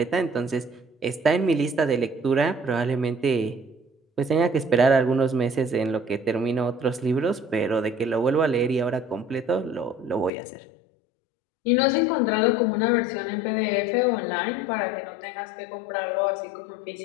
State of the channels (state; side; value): drops out; right; at 10.3 s